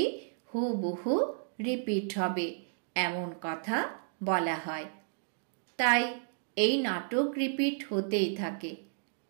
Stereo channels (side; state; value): left; silent; digital silence